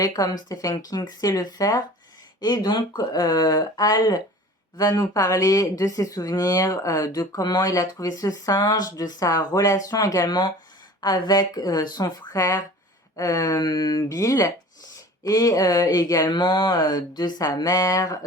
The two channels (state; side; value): normal; both; correlation 0.42